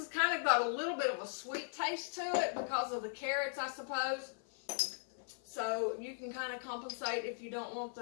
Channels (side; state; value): right; silent; 52 dB below the other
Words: kind of got a little bit of a sweet taste to it because of the carrots, I suppose. So you can kind of compensate if you don't want